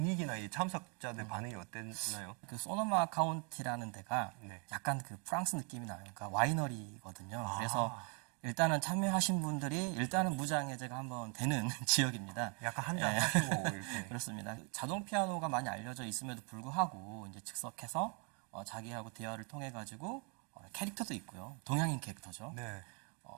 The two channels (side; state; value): left; quieter; 35.9 dB